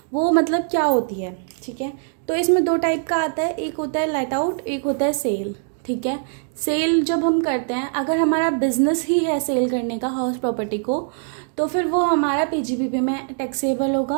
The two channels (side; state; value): left; silent; 60 dB below the other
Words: वो मतलब क्या होती है, ठीक है। तो इसमें दो टाइप का आता है, एक होता है लेट आउट, एक होता है सेल, ठीक है। सेल जब हम करते हैं, अगर हमारा बिजनेस ही है सेल करने का हाउस प्रॉपर्टी को, तो फिर वो हमारा पीजीबीपी में टैक्सेबल